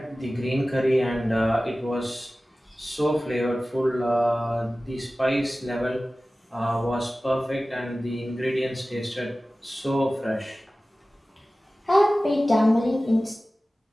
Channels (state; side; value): normal; both; correlation 0.96